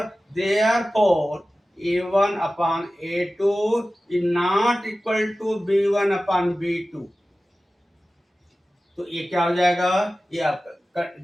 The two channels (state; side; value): normal; both; correlation 0.96